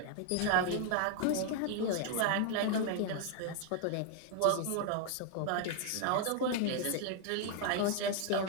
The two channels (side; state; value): both; different; correlation 0.00